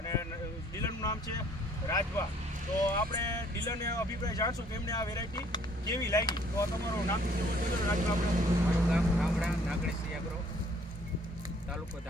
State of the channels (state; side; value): normal; both; correlation 0.60